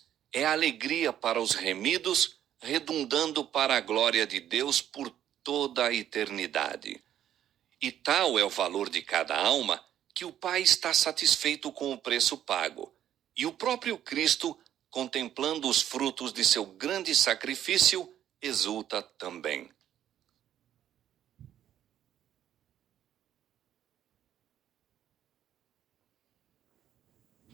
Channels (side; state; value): left; quieter; 10.9 dB